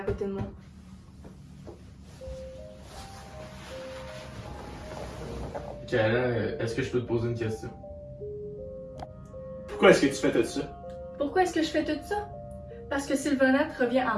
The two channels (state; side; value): identical; both; correlation 1.00